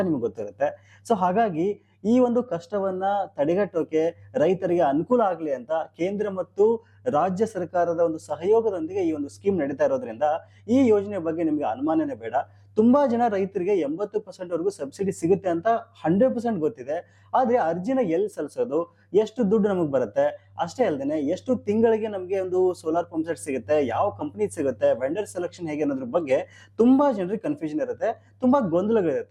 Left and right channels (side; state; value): both; identical; correlation 1.00